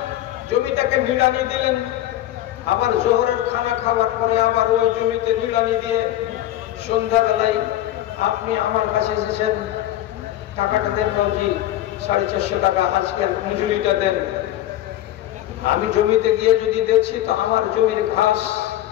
জমিটাকে নিড়ানি দিলেন। আবার জোহরের খানা খাওয়ার পরে আবার ওই জমিতে নিড়ানি দিয়ে সন্ধ্যাবেলায় আপনি আমার কাছে এসেছেন, টাকাটা দেন মৌজি, 450 টাকা আজকের মজুরিটা দেন। আমি জমিতে গিয়ে যদি দেখছি তো আমার জমির ঘাস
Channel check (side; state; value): right; quieter; 13.7 dB